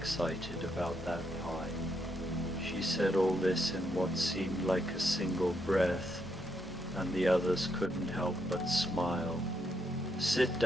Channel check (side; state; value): both; normal; correlation 0.78